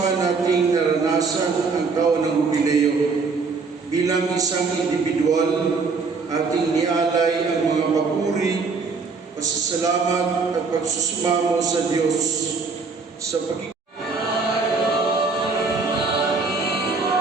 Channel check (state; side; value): quieter; left; 4.5 dB